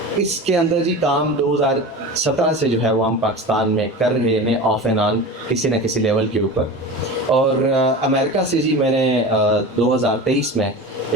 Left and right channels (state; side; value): normal; both; correlation 0.30